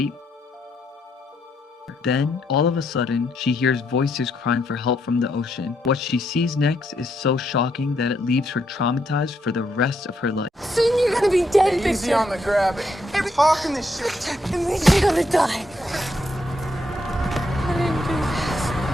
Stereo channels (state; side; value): normal; both; correlation 0.77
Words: Then, all of a sudden, she hears voices crying for help from the ocean. What she sees next is so shocking that it leaves her traumatized for the rest of her life. Soon you're gonna be dead, Victor. Easy on the grab. Hey, we're talking this shit. It means you're gonna die. I didn't do this.